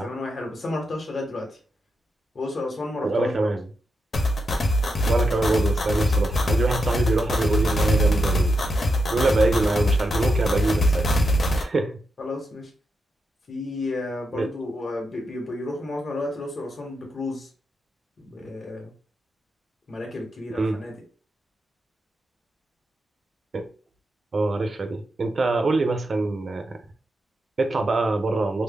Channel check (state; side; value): normal; both; correlation 0.85